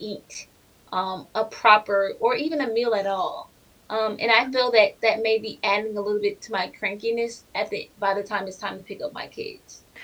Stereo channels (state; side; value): identical; both; correlation 1.00